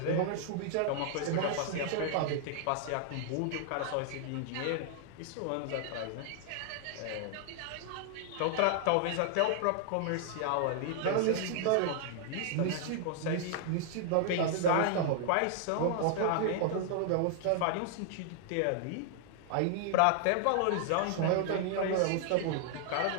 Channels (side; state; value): both; different; correlation 0.00